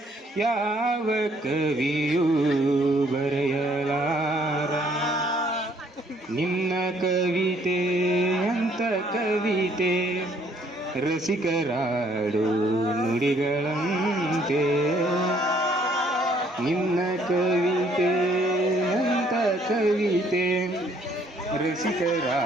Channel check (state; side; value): normal; both; correlation 0.64